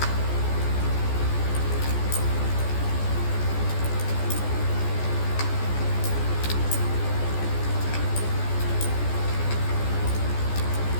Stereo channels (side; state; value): right; late; 14 ms